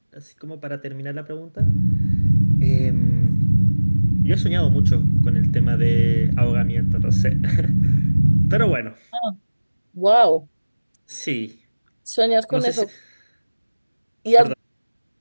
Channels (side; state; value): both; inverted; correlation -1.00